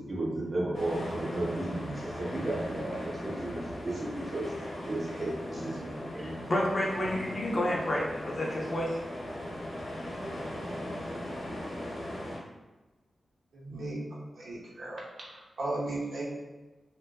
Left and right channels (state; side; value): normal; both; correlation 0.90